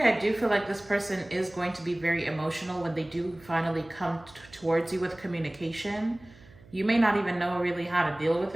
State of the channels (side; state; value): right; noise; hum, 24 dB below the sound